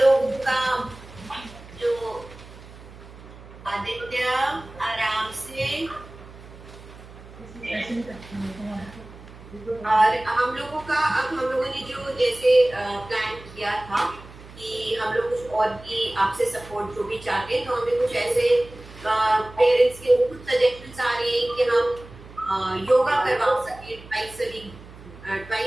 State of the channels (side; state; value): right; noise; hum, 18 dB below the sound